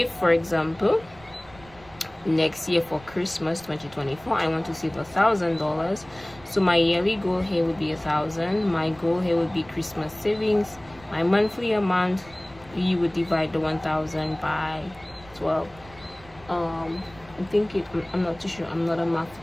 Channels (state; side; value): noise; right; rumble, 23 dB below the sound